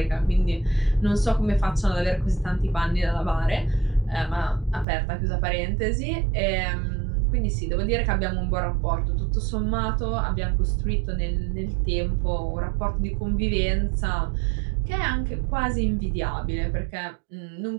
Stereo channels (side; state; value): left; drops out; at 4.9 s